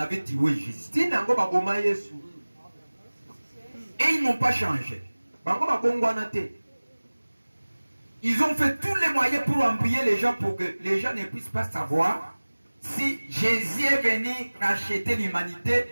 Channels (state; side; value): inverted; both; correlation -1.00